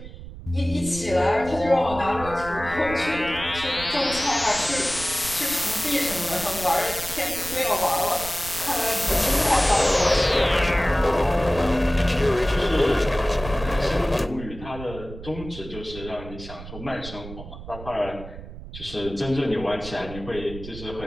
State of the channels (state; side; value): noise; right; rumble, 13 dB below the sound